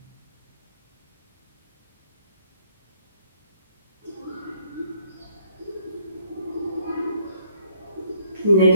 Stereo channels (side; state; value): both; inverted; correlation -0.64